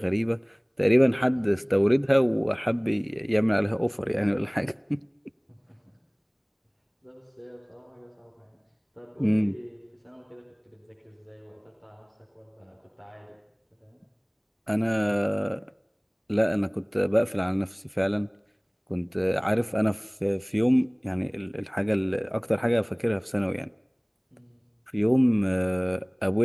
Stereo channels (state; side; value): identical; both; correlation 1.00